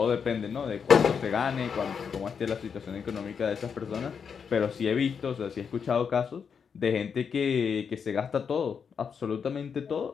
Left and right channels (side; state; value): right; quieter; 6.6 dB